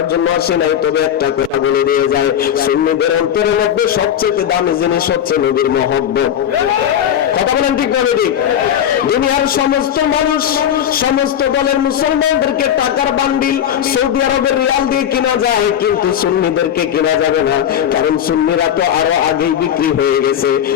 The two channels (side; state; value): right; quieter; 9.7 dB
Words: জন্য আসি নাই, তবে একটা কথা বলে দিয়ে যায়, সুন্নিদের অন্তরের মধ্যে সবচেয়ে দামি জিনিস হচ্ছে নবীর মহব্বত। কথা বলেন ঠিক না ঠিক? দুনিয়ার সমস্ত মানুষ, সমস্ত দলের মুসলমানদেরকে টাকার বান্ডিল সৌদি আরবের রিয়াল দিয়ে কিনা যায়, কিন্তু সুন্নিদেরকে কিনা যাবে না, কারণ সুন্নিরা তো আরো আগেই বিক্রি হয়ে গেছে।